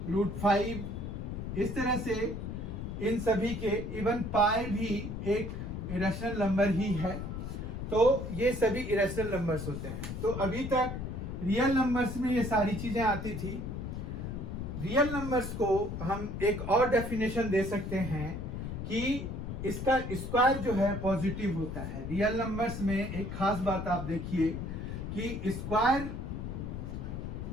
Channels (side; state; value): left; noise; rumble, 5 dB below the sound